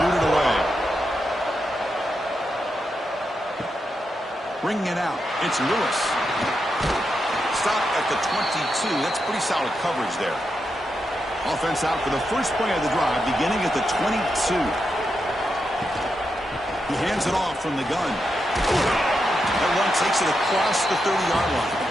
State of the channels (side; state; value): both; normal; correlation 0.85